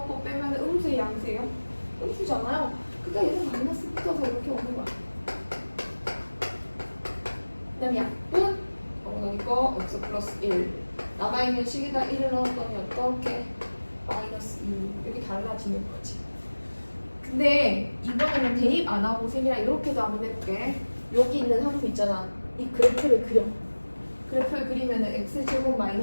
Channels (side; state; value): both; inverted; correlation -1.00